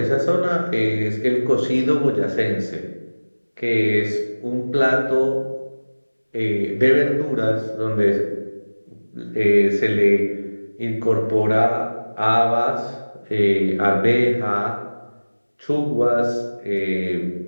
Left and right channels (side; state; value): both; inverted; correlation -1.00